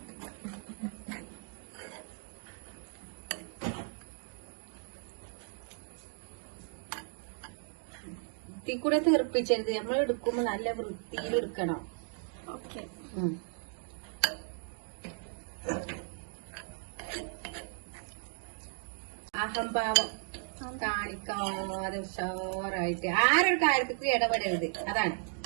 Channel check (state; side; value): silent; left; 54 dB below the other